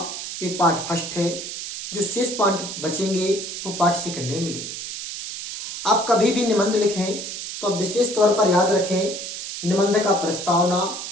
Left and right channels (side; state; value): right; noise; hiss, 7 dB below the sound